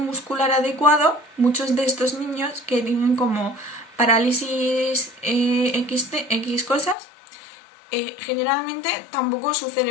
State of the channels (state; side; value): drops out; right; at 7.0 s